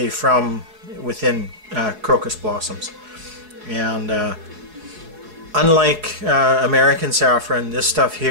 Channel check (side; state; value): left; late; 4.7 ms